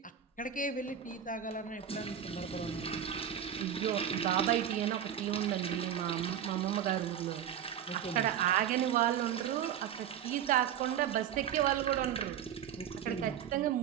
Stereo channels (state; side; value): quieter; left; 9.4 dB